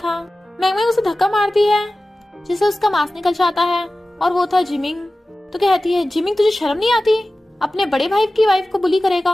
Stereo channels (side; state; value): both; normal; correlation 0.96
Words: मैंगमिंग उसे धक्का मारती है जिससे उसका मास्क निकल जाता है और वो था जिमिंग। तो कहती है जिमिंग तुझे शर्म नहीं आती, अपने बड़े भाई की वाइफ को बुली करेगा,